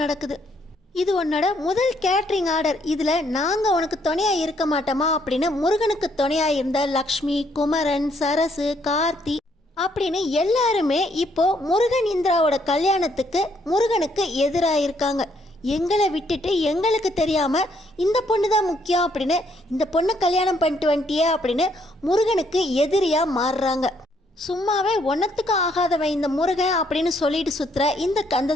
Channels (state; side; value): normal; both; correlation 0.70